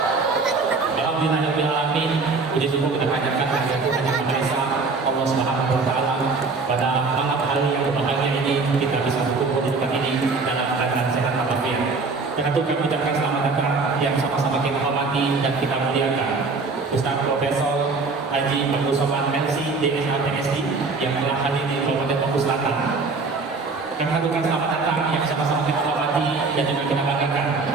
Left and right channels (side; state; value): left; quieter; 4.1 dB